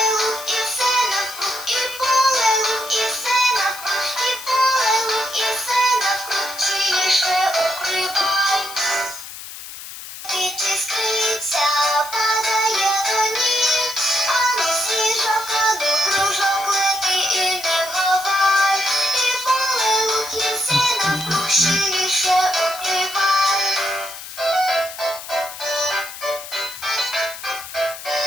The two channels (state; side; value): noise; left; hiss, 12 dB below the sound